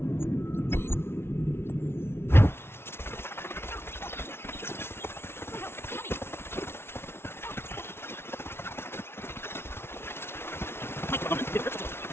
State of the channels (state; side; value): late; right; 0.12 ms